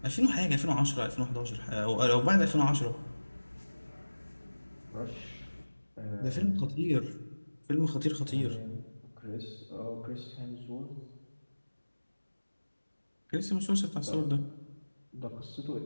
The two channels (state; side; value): inverted; both; correlation -1.00